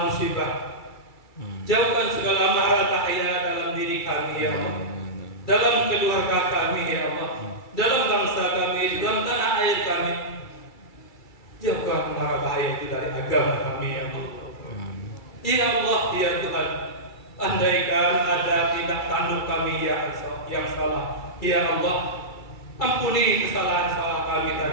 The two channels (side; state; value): right; late; 2.3 ms